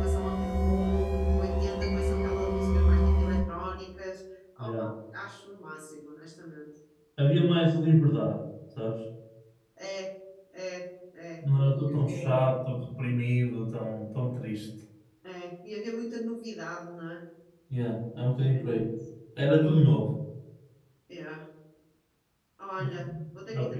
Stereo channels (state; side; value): identical; both; correlation 1.00